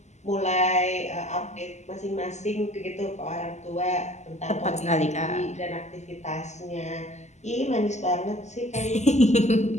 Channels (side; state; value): right; late; 0.33 ms